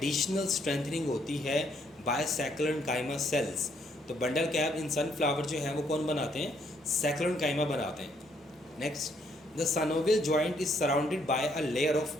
स्ट्रेंथनिंग होती है बाय सैक्रोनकाइमा सेल्स। तो बंडल कैप इन सनफ्लावर जो है वो कौन बनाते हैं, सैक्रोनकाइमा बनाते हैं। Next, the synovial joint is surrounded by a layer of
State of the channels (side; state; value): both; normal; correlation 0.70